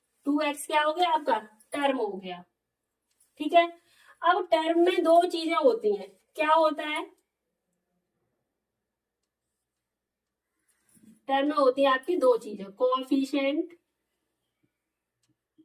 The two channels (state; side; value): identical; both; correlation 1.00